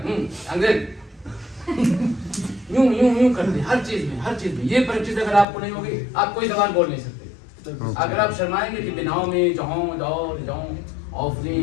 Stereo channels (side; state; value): right; drops out; at 5.5 s